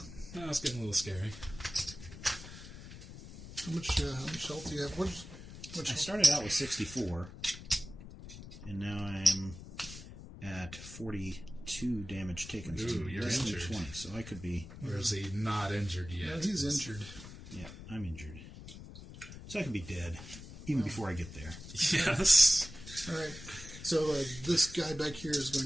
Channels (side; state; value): left; noise; rumble, 14 dB below the sound